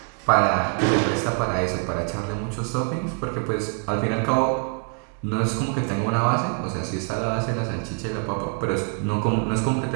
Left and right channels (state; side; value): quieter; left; 37.7 dB